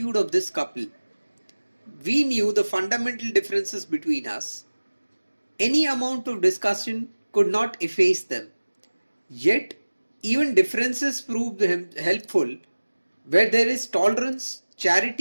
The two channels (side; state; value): both; inverted; correlation -1.00